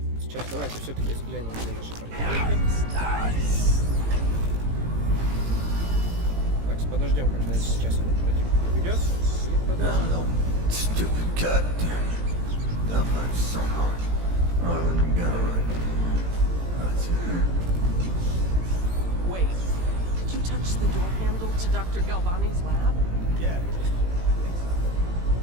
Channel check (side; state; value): left; late; 18 ms